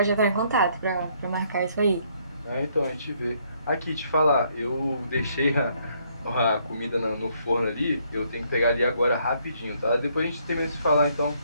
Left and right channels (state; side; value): inverted; both; correlation -0.69